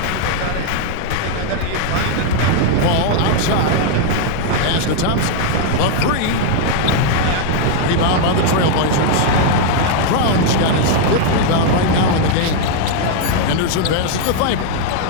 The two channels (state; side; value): different; both; correlation 0.00